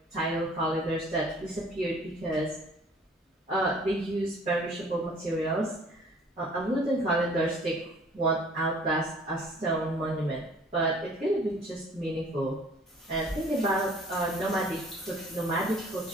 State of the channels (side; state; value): both; normal; correlation 0.53